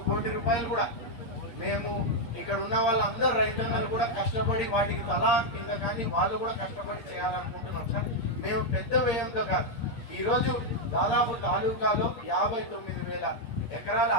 కోటి రూపాయలు కూడా మేము ఇక్కడ ఉన్న వాళ్ళందరూ రైతన్నలు కూడా కష్టపడి వాటికి తలా కింద కానీ వాళ్ళు కూడా కష్టపడి చేయాలనుకుంటున్నాం సార్. మేము పెద్ద వ్యయంతో కాదు, ఈరోజు దాదాపు తాలూకాలో 59,000 ఎకరాల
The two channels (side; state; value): right; late; 8.3 ms